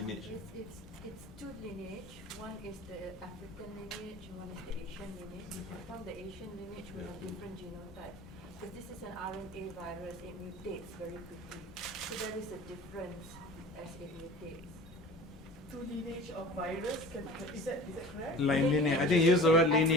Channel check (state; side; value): normal; both; correlation 0.40